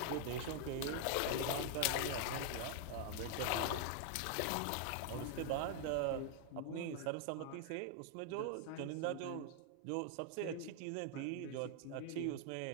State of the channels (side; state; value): both; different; correlation 0.00